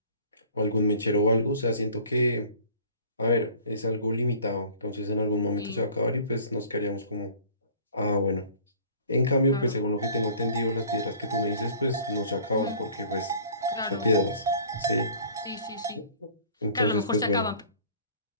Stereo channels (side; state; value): both; inverted; correlation -0.49